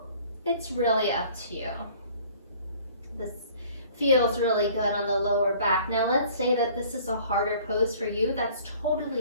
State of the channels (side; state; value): both; inverted; correlation -0.53